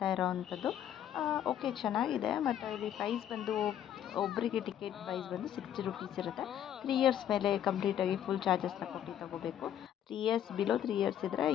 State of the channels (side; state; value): right; quieter; 10.4 dB